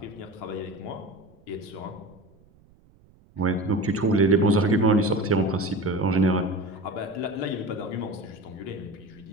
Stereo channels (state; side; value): noise; right; rumble, 29 dB below the sound